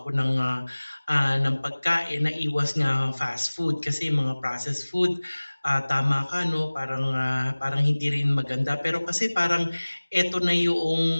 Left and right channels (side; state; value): both; inverted; correlation -1.00